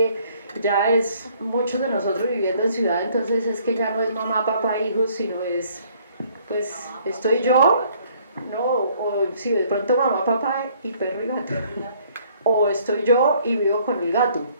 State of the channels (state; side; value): inverted; both; correlation -0.62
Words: ya es muchos de nosotros viviendo en ciudad, entonces es que ya no es mamá, papá, hijos, sino es, pues, estoy yo, ¿no? O si de pronto mamá, papá y perro y gato. O estoy yo y vivo con el gato,